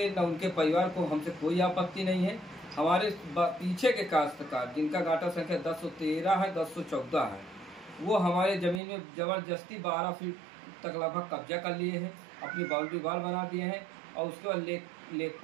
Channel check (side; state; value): left; drops out; at 8.8 s